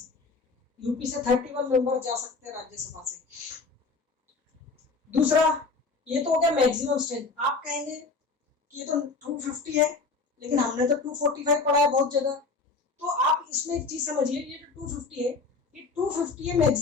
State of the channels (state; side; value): quieter; right; 4.0 dB